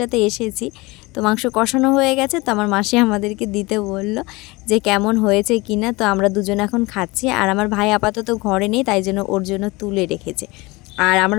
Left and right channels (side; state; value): right; quieter; 23.3 dB